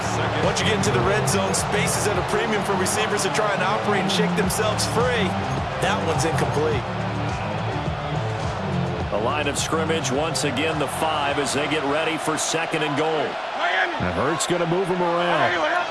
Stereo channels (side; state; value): both; identical; correlation 1.00